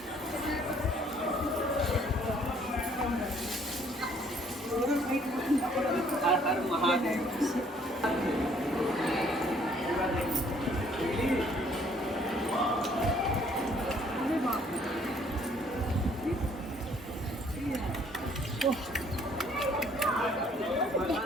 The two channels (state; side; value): normal; both; correlation 0.61